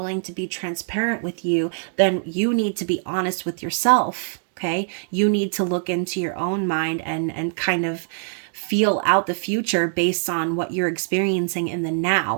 to be transparent with you, then you need to be honest with yourself. Okay, you need to look into your own mind and kind of feel out the future based on what you're experiencing in the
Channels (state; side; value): silent; left; digital silence